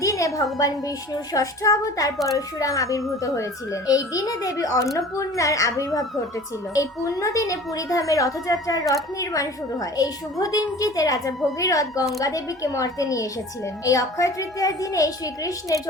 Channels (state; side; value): normal; both; correlation 0.43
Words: দিনে ভগবান বিষ্ণুর ষষ্ঠ অবতার পরশুরাম আবির্ভূত হয়েছিলেন। এই দিনে দেবী অন্নপূর্ণার আবির্ভাব ঘটেছিল। এই পুণ্য দিনে পুরীধামে রথযাত্রার রথ নির্মাণ শুরু হয়। এই শুভ দিনটিতে রাজা ভগীরথ গঙ্গা দেবীকে মর্তে নিয়ে এসেছিলেন। এই অক্ষয় তৃতীয়ার দিনে শ্রীকৃষ্ণের